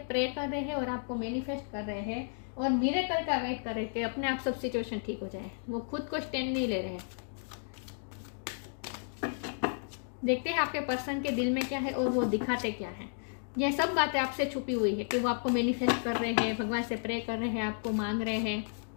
प्रे कर रहे हैं और आपको मैनिफेस्ट कर रहे हैं और मिरेकल का वेट कर रहे हैं कि अपने आप सब सिचुएशन ठीक हो जाए। वो खुद को स्टैंड नहीं ले रहे हैं। देखते हैं आपके पर्सन के दिल में क्या है और वो दिखाते क्या है। यह सब बातें आपसे छुपी हुई है कि वो आपको मैनिफेस्ट कर रहे हैं, भगवान से प्रे कर रहे हैं, आपको मांग रहे हैं,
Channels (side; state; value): right; silent; digital silence